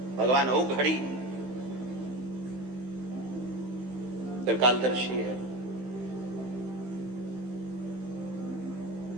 भगवान ओ घड़ी त्रिकालदर्शी है।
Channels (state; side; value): late; left; 15 ms